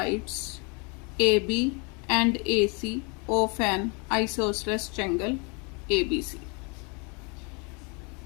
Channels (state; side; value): quieter; right; 32.8 dB